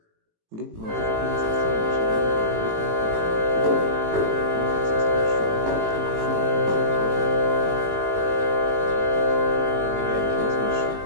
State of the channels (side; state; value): left; late; 18 ms